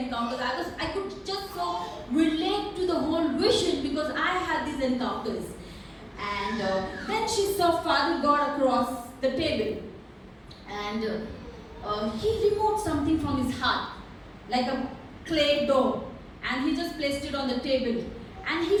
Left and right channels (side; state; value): both; identical; correlation 1.00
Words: I could just so relate to the whole vision because I had these encounters. And then she saw Father God across the table. And He removed something from His heart, like a clay dough. And He just placed it on the table. And He